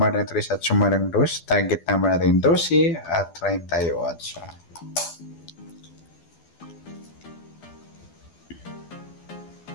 3 at sumadan 2. Target number natin 12 at 38.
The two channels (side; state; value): right; late; 12 ms